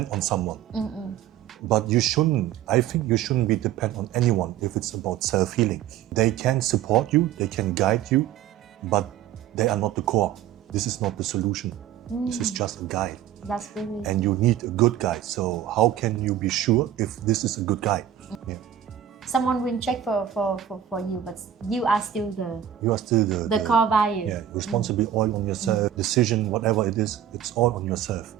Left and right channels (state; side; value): quieter; left; 10.6 dB